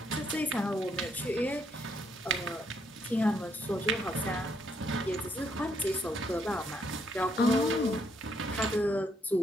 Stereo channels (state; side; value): normal; both; correlation 0.73